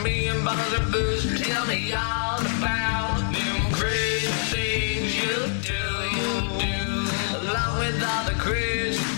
me in bottles of booze. Tell me all about them crazy things you do. Along with all the crazy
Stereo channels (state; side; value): silent; right; digital silence